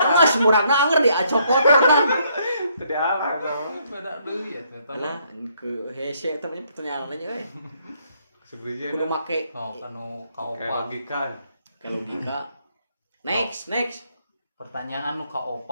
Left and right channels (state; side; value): inverted; both; correlation -0.70